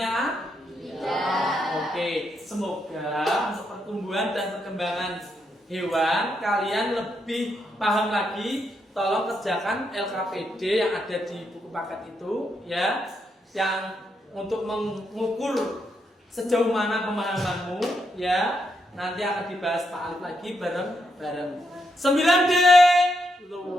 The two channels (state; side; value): normal; both; correlation 0.80